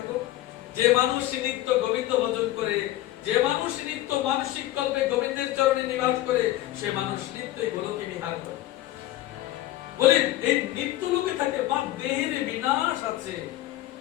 যে মানুষ নিত্য গোবিন্দ ভজন করে, যে মানুষ নিত্য মানসিক কল্পে গোবিন্দের চরণে নিবাস করে, সে মানুষ নিত্যই গোলকে বিহার করে। বলে এই নিত্য লোকে থাকে, বা দেহের বিনাশ আছে।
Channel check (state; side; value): quieter; right; 15.2 dB